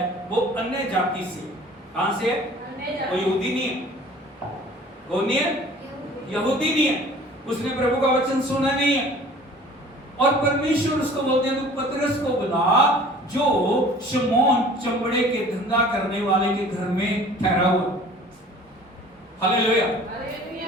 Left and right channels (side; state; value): both; normal; correlation 0.48